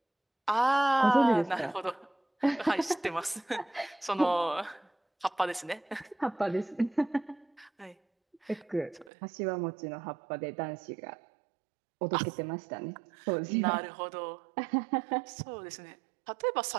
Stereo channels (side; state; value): left; drops out; at 9.1 s